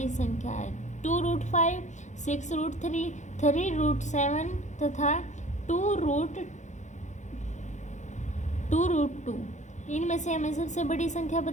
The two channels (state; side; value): late; right; 0.35 ms